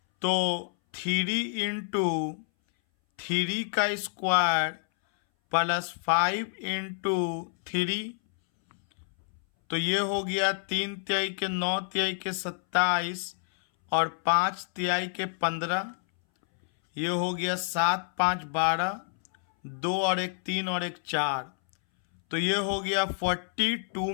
तो 3 इंटू 3 का स्क्वायर प्लस 5 इंटू 3, तो ये हो गया 3 तिहाई के 9 तिहाई के 27 और 5 तिहाई के 15, ये हो गया 7 5 12, 2 और 1 3 और 1 4, तो ये हो गया 42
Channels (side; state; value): right; silent; 59 dB below the other